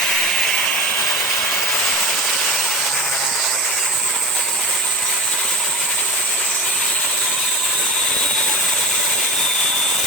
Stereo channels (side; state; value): both; normal; correlation 0.32